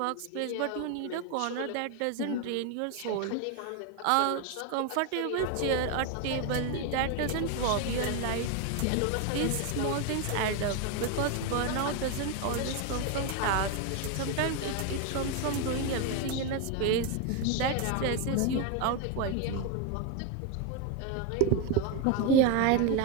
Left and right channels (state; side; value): different; both; correlation 0.02